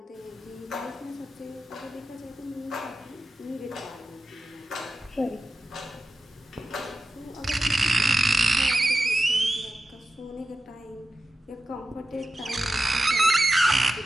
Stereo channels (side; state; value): both; normal; correlation 0.93